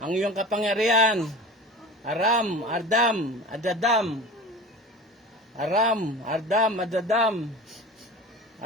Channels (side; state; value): both; normal; correlation 0.36